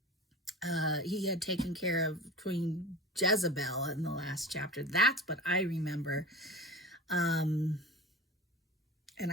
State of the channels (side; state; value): both; normal; correlation 0.34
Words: He had taken care of Queen Jezebel in the last chapter. That's what I remember. And